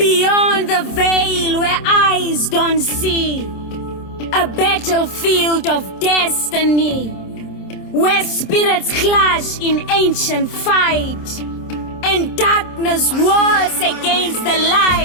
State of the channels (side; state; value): right; late; 27 ms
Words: the veil where eyes don't see, a battlefield of destiny, where spirits clash in ancient fight, and darkness wars against the